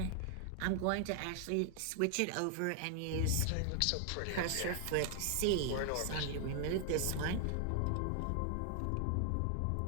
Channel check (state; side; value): different; both; correlation 0.00